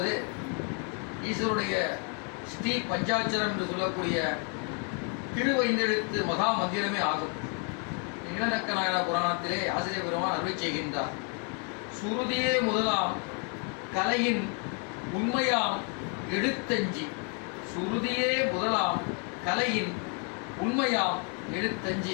ஈஸ்வருடைய ஸ்ரீ பஞ்சாட்சரம் என்று சொல்லக்கூடிய திருவைந்தெழுத்து மகா மந்திரமே ஆகும். இளநக்க நாயனா புராணத்திலே ஆசிரியர் பெருமான் அருளை செய்கின்றார். சுருதியே முதலாம் கலையின் உண்மையாம் எழுத்தஞ்சி. சுருதியே முதலாம் கலையின் உண்மையாம்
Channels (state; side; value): quieter; right; 37.3 dB